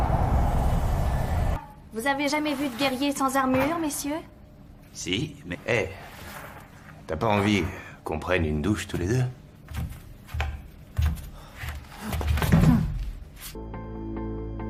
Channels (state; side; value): identical; both; correlation 1.00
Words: Vous avez jamais vu de guerrier sans armure, messieurs? Si, mais... Hé, t'as pas envie qu'on prenne une douche tous les deux?